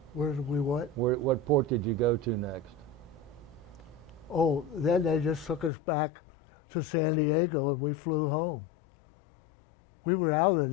Where did we what? What port did you go to next? Oh, then they just took us back to San Diego and we flew home. We were out of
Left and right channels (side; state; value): right; drops out; at 5.7 s